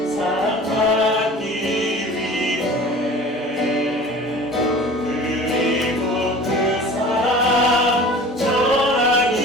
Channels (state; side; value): normal; both; correlation 0.42